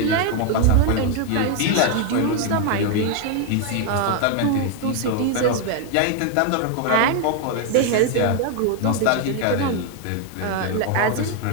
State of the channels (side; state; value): both; different; correlation 0.01